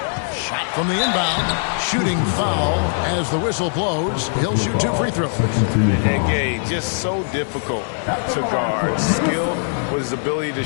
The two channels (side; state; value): right; silent; 65 dB below the other